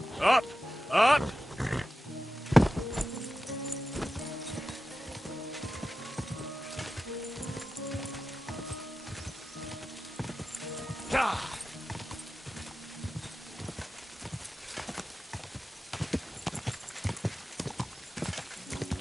Up! Up! God!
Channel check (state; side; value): normal; both; correlation 0.93